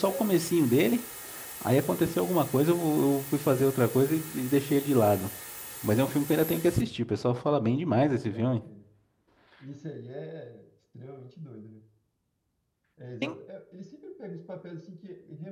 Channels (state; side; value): identical; both; correlation 1.00